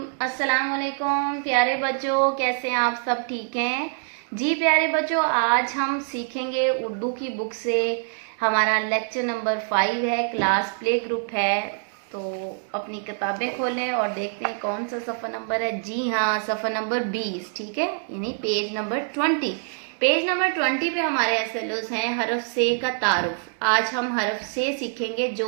अस्सलाम वालेकुम प्यारे बच्चों, कैसे हैं आप सब? ठीक हैं जी प्यारे बच्चों। आज हम सीखेंगे उर्दू की बुक से। हमारा लेक्चर नंबर 5 है, क्लास प्ले ग्रुप है। तो अपनी किताबें खोलें और देखते हैं कौन सा सफ़ा नंबर है। जी हाँ, सफ़ा नंबर 20, ठीक है, यानी पेज नंबर 20। पेज नंबर 20 पे हमारे एसएलओस हैं हरफ से का तारुफ। आज हम हरफ से सीखेंगे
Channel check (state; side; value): silent; left; 62 dB below the other